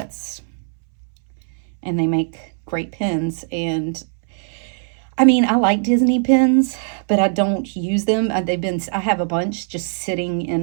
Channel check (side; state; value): left; silent; 65 dB below the other